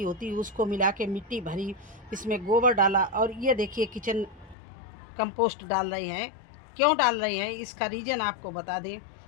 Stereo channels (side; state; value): right; drops out; at 4.5 s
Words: होती है उसको मिला के मिट्टी भरी, इसमें गोबर डाला। और ये देखिए किचन कंपोस्ट डाल रहे हैं। क्यों डाल रहे हैं इसका रीज़न आपको बता दें।